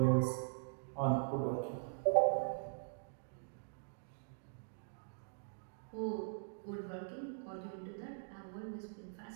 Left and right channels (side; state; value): left; silent; digital silence